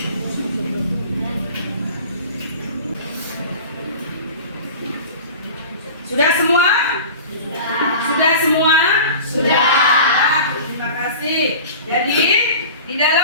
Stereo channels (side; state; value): both; inverted; correlation -0.37